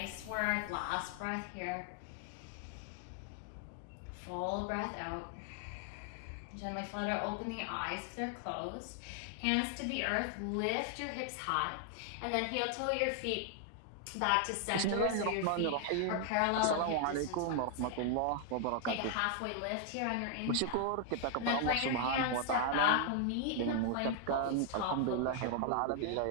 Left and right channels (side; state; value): both; different; correlation 0.00